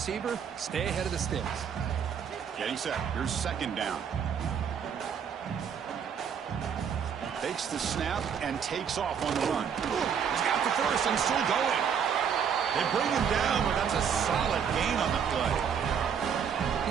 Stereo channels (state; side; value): quieter; left; 7.5 dB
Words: stay ahead of the sticks. Getting set. Here's second down. Takes the snap and takes off on the run. He's got the first and still going. They bring him down, but that's a solid gain on the play.